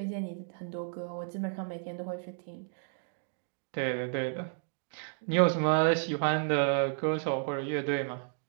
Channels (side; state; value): left; silent; digital silence